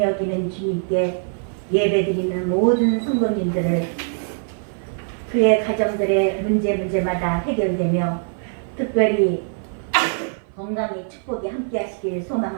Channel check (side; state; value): left; silent; 55 dB below the other